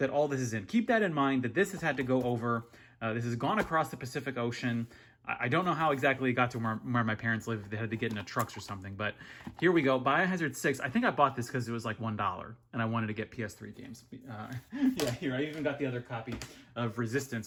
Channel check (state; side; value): identical; both; correlation 1.00